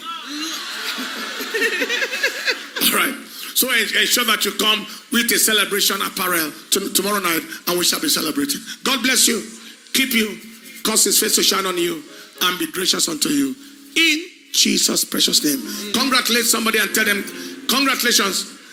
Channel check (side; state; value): both; identical; correlation 1.00